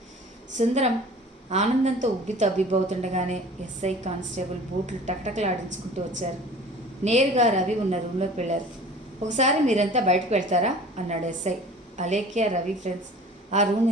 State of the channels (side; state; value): both; normal; correlation 0.44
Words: సుందరం ఆనందంతో ఉబ్బి తబ్బిబ్బవుతుండగానే ఎస్ఐ, కానిస్టేబుల్ బూట్లు టక్టకలాడించుకుంటూ వచ్చారు. నేరుగా రవి ఉన్న రూమ్లోకి వెళ్ళారు. ఒకసారి మీరంతా బయటకు వెళ్తారా అన్నాడు ఎస్ఐ. అలేఖ్య, రవి ఫ్రెండ్స్ ఆ రూమ్